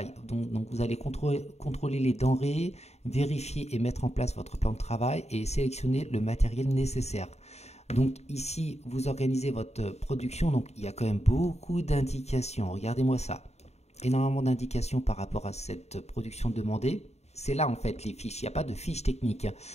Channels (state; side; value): late; right; 0.31 ms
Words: Donc vous allez contrôler les denrées, vérifier et mettre en place votre plan de travail et sélectionner le matériel nécessaire. Donc ici, vous organisez votre production. Donc il y a quand même beaucoup d'indications. Regardez-moi ça. Énormément d'indications par rapport à cette production demandée. C'est là en fait les fiches. Il n'y a pas de fiches techniques.